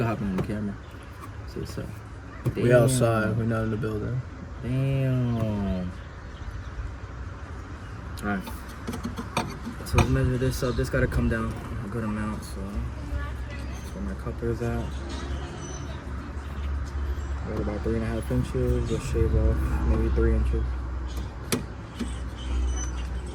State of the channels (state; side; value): identical; both; correlation 1.00